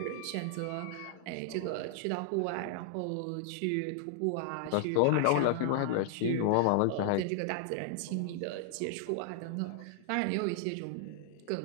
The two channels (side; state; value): both; different; correlation -0.01